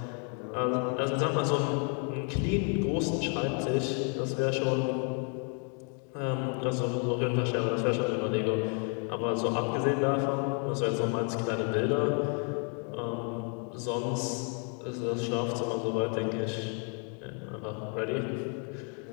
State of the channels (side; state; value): right; quieter; 39.8 dB